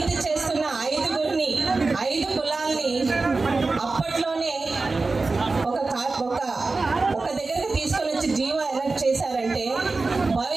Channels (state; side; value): quieter; left; 3.7 dB